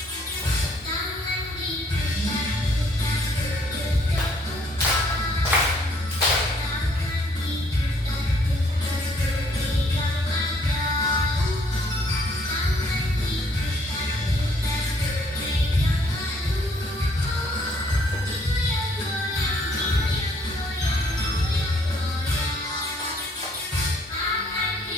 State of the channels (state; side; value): normal; both; correlation 0.64